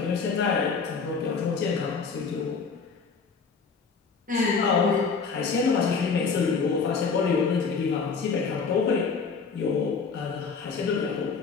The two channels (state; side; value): quieter; right; 5.2 dB